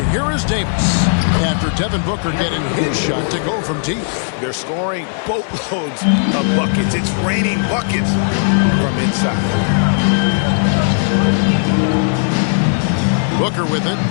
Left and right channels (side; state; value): right; silent; digital silence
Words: here is Davis after Devin Booker getting his shot to go from deep. They're scoring boatloads of buckets. It's raining buckets from inside. Booker with it.